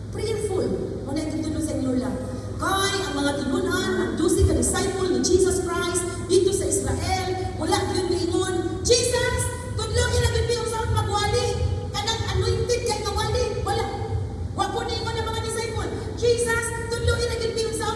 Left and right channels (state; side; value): identical; both; correlation 1.00